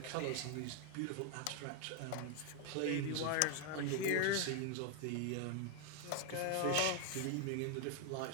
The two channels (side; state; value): both; different; correlation 0.01